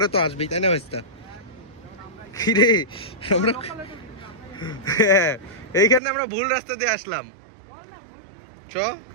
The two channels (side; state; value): left; drops out; at 6.0 s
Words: তো আসবেই, তাই না ভাইস্তা? রে আমরা হ্যাঁ, এইখানে আমরা ভুল রাস্তা দিয়ে আসলাম।